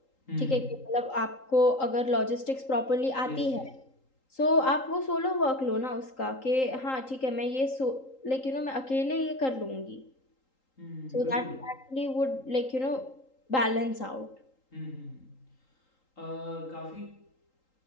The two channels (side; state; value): right; late; 3.8 ms